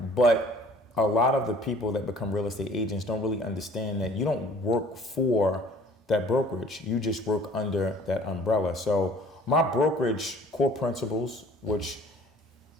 But a lot of the people that become real estate agents don't really understand that you don't work for that brokerage. You just work under that umbrella. So my brokerage core principles, which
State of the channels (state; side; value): normal; both; correlation 0.52